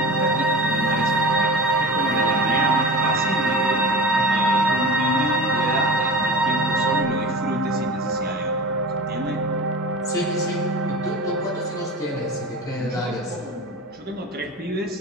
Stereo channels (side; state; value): both; normal; correlation 0.33